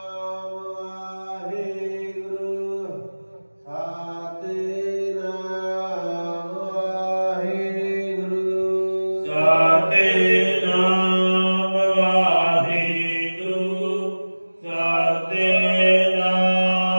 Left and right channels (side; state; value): both; inverted; correlation -1.00